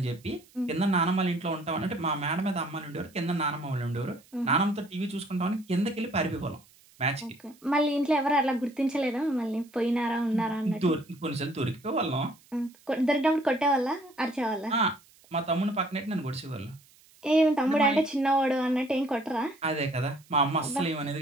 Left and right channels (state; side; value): noise; right; hiss, 28 dB below the sound